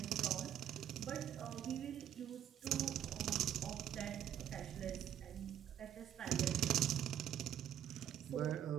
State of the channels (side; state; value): left; quieter; 10.4 dB